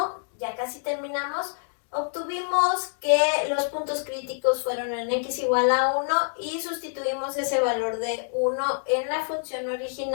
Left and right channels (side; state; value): right; silent; digital silence